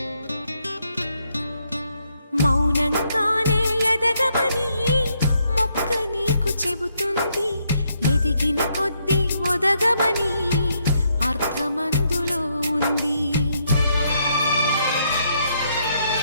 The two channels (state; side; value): inverted; both; correlation -0.75